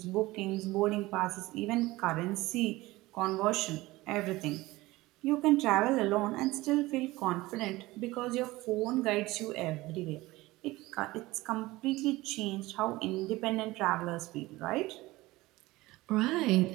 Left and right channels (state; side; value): quieter; left; 19.4 dB